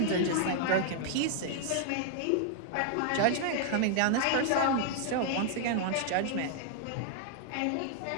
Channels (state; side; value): different; both; correlation 0.00